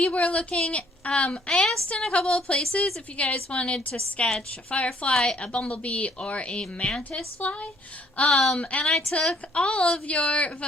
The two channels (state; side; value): normal; both; correlation 0.63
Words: were looking, I asked in a couple of places if you guys wanted to sketch a firefly, a bumblebee, or a mantis fly. And I took all of your